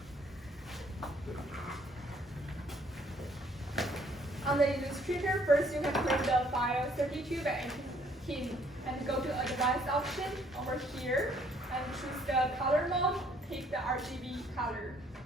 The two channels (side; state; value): both; normal; correlation 0.64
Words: On the Illustrator, first you can create the file 32 by 18 and go to Advanced option over here and choose the color mode, pick the RGB color,